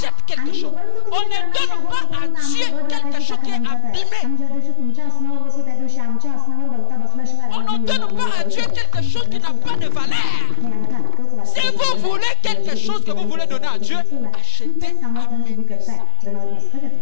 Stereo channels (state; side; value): different; both; correlation 0.00